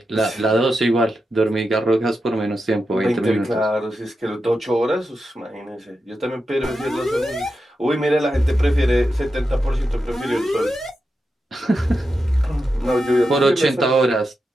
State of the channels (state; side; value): normal; both; correlation 0.88